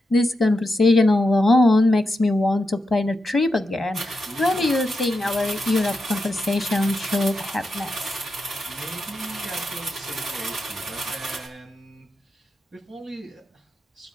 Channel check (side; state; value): both; normal; correlation 0.87